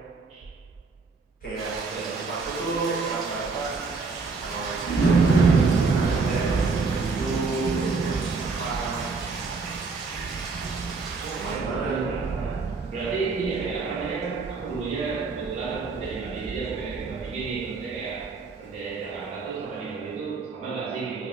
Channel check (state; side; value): quieter; left; 4.3 dB